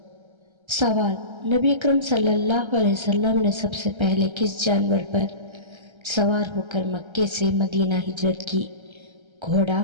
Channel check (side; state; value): left; late; 1.3 ms